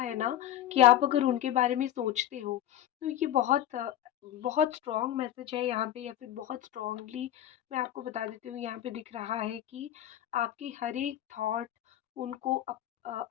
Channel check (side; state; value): right; quieter; 12.3 dB